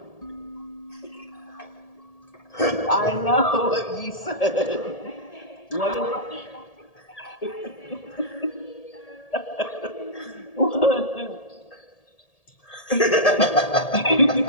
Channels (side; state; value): right; late; 1.8 ms